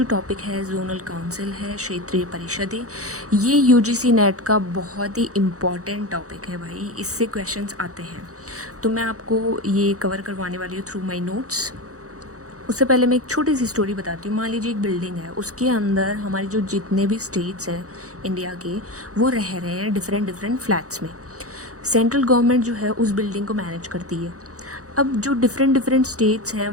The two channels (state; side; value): late; left; 0.65 ms